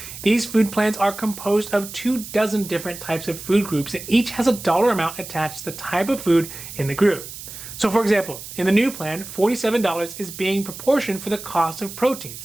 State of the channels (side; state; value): right; noise; hiss, 12 dB below the sound